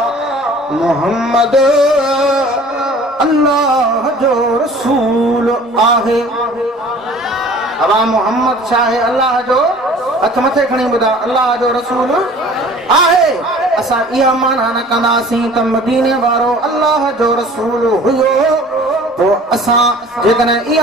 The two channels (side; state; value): both; normal; correlation 0.48